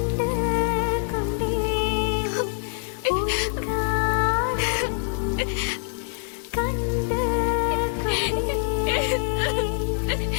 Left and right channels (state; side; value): silent; right; digital silence